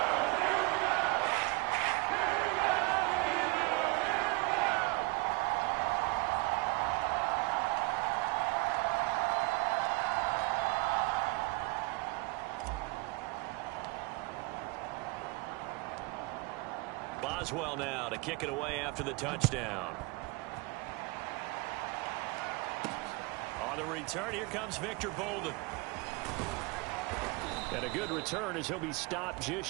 Boswell now to kick it away after the touchdown. On the return, here comes Victor Bolden. And a good return as he'll be stopped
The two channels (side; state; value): left; quieter; 25.8 dB